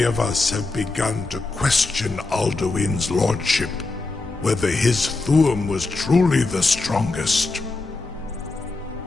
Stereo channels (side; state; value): right; quieter; 3.4 dB